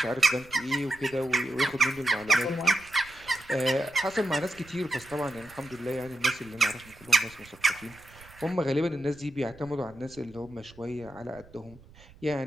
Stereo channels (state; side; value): noise; right; rumble, 23 dB below the sound